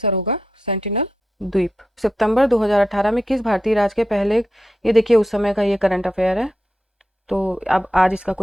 होगा सेंटिनल द्वीप। सितंबर 2018 में किस भारतीय राज्य के पहले, ये देखिए उस समय का ये करंट अफेयर है, तो अब आज इसका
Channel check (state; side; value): normal; both; correlation 0.87